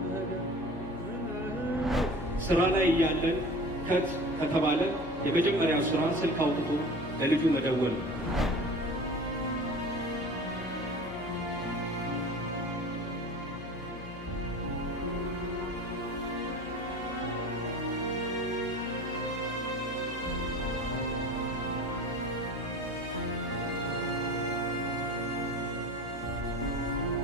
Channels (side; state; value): left; noise; hum, 13 dB below the sound